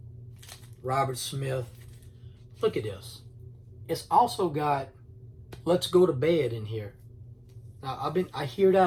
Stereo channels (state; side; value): identical; both; correlation 1.00